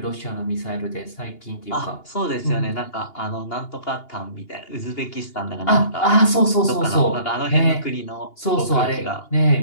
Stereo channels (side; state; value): right; late; 2.8 ms